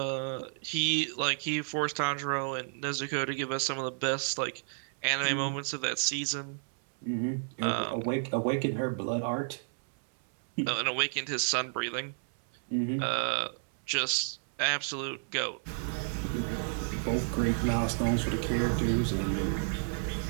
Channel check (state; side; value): silent; left; 57 dB below the other